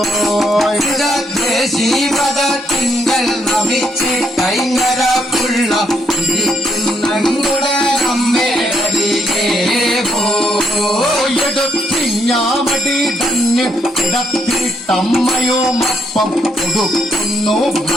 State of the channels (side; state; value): both; normal; correlation 0.74